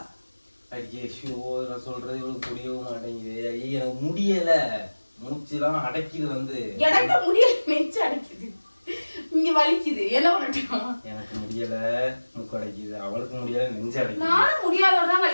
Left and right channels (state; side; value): inverted; both; correlation -1.00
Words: ஐயே ஷோ, நான் சொல்றது இவளுக்கு புரியவும் மாட்டேங்குது. ஐயே எனக்கு முடியல, மூச்சுலாம் அடைக்குது. எனக்கு முடியல, நெஞ்சு அடைக்குது, இங்க வலிக்குது. என்ன பண்ணட்டும்? எனக்கு முடியல, மூக்கு அடைக்குது. அவளுக்கு முடியல, நெஞ்சு அடைக்குது. நானும் முடியாதோட தான்